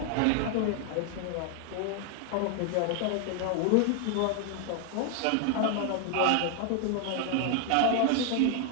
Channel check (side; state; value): both; different; correlation 0.00